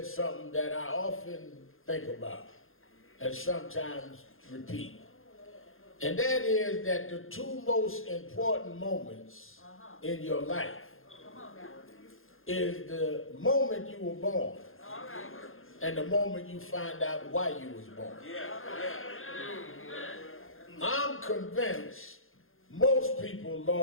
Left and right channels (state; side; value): late; right; 0.60 ms